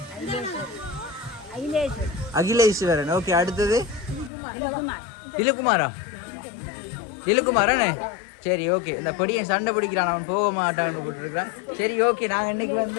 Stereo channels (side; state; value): right; drops out; at 4.3 s